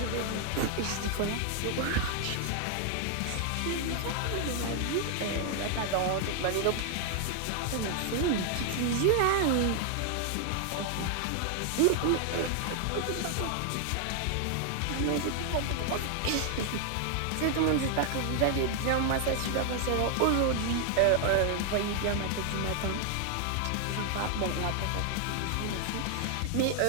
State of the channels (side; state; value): both; different; correlation 0.00